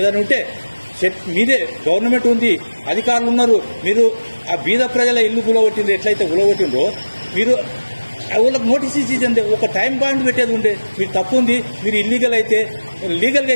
ఉంటే మీదే గవర్నమెంట్ ఉంది, అధికారులు ఉన్నారు, మీరు ఆ బీద ప్రజల ఇల్లు గులగొట్టింది ఎట్లయితే గులగొట్టిందో మీరు వాళ్ళకి నోటీస్ ఇచ్చింది. ఒక టైం పాయింట్ పెట్టేది ఉండే. మీరు తప్పు ఉంది, మీరు లీగల్గా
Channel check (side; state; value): both; inverted; correlation -1.00